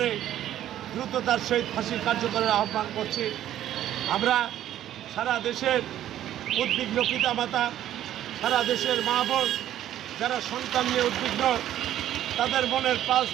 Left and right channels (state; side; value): quieter; left; 12.1 dB